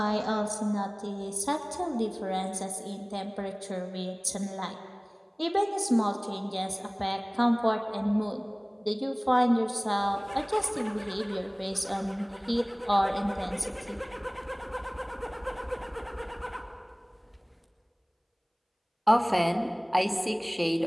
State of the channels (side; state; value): both; identical; correlation 1.00